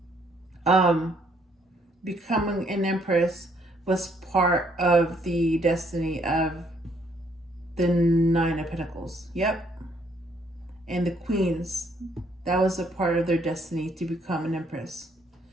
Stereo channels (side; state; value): both; normal; correlation 0.68